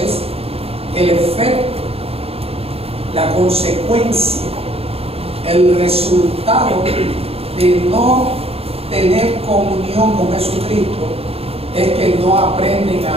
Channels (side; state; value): left; late; 0.29 ms